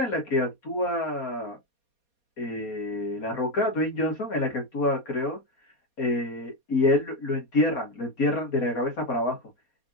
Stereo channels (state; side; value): late; right; 4.2 ms